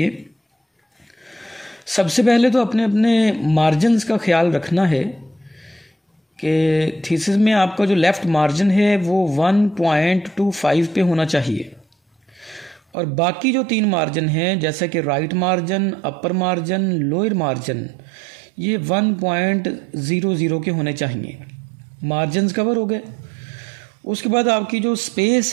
सबसे पहले तो अपने अपने मार्जिन्स का ख्याल रखना है कि थीसिस में आपका जो लेफ़्ट मार्जिन है वो 1.25 पे होना चाहिए, और बाकी जो 3 मार्जिन हैं जैसे कि राइट मार्जिन, अपर मार्जिन, लोअर मार्जिन, ये 1.00 के होने चाहिए। मार्जिन्स कवर हो गए। उसके बाद आपकी जो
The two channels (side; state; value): left; drops out; at 12.8 s